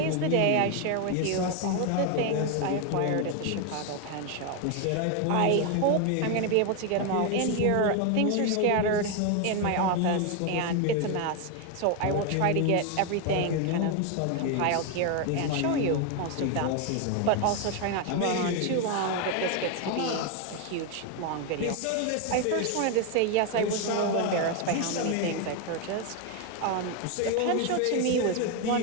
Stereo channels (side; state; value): both; different; correlation 0.01